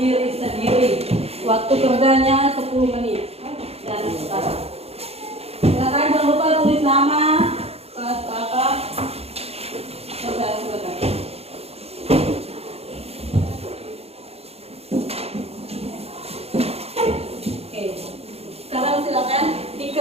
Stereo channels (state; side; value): late; left; 0.29 ms